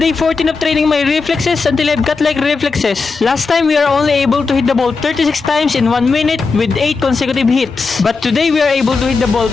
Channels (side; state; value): right; quieter; 4.5 dB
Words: 14 of training my reflexes until I've got like reflexes. Last time we are only able to hit the ball 36 times in 1 minute with 8 consecutive hits. But today we are able to hit the ball